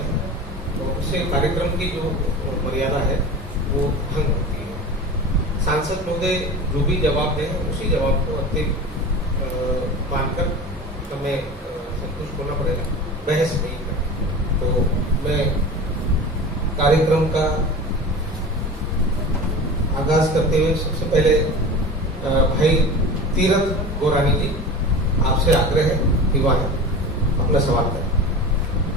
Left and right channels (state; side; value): normal; both; correlation 0.33